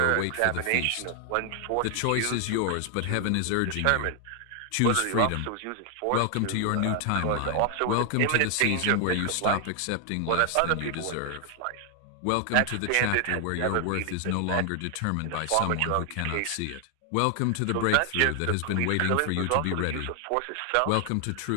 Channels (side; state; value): both; different; correlation 0.00